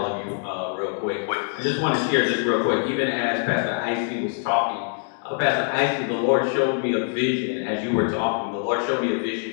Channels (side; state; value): right; silent; 56 dB below the other